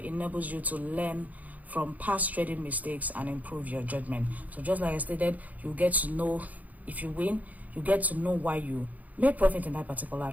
you to learn from past trading mistakes and improve your judgment. So just like I stated, you get to know, if you win, you get to know why you made profit in that particular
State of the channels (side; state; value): left; late; 0.077 ms